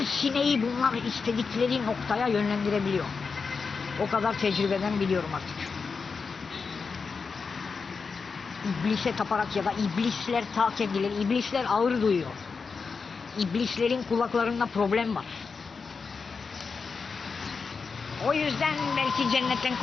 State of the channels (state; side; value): quieter; right; 5.0 dB